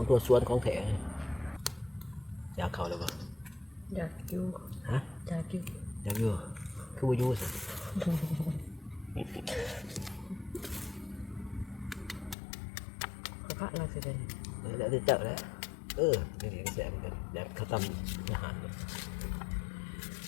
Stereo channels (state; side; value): drops out; right; at 12.4 s